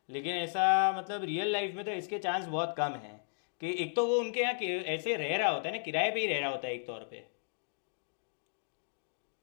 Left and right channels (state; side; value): silent; right; digital silence